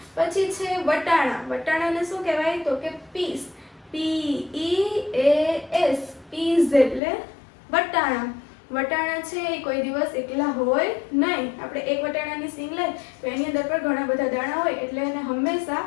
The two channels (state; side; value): drops out; right; at 7.0 s